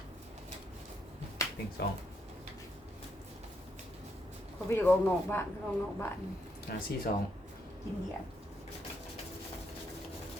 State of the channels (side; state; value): both; normal; correlation 0.77